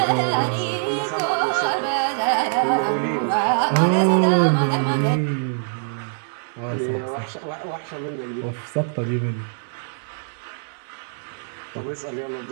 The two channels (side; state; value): left; silent; 63 dB below the other